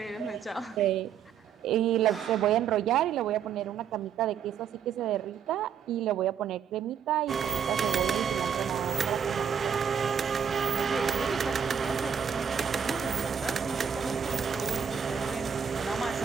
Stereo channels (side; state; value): left; quieter; 7.6 dB